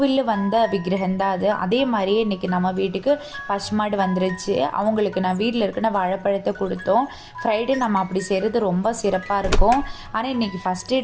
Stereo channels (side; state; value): both; identical; correlation 1.00